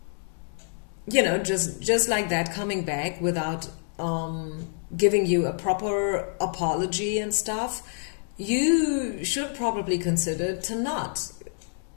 you know, just like that, coming back without giving you a proper apology and stuff, you should probably consider to not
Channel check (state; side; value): silent; right; digital silence